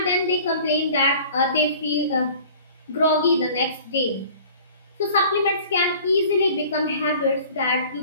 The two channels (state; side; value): inverted; both; correlation -0.47